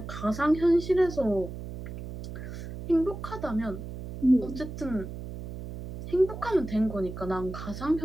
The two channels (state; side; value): noise; right; hum, 9 dB below the sound